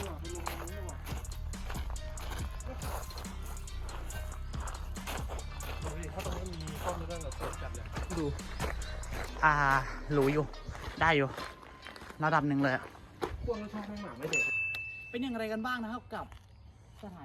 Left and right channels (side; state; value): both; identical; correlation 1.00